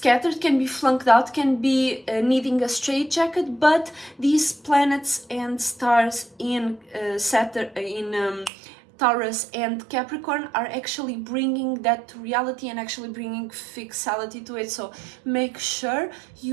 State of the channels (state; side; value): drops out; left; at 8.5 s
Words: can be flunked out, can be needing a straitjacket, but these planets and stars in Saturn, in Taurus and Capricorn are actually bringing that to reality and actually bringing fixality to it. So make sure